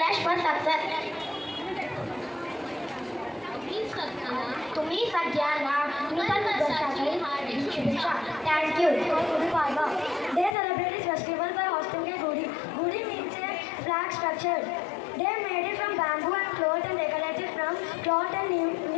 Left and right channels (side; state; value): right; drops out; at 10.6 s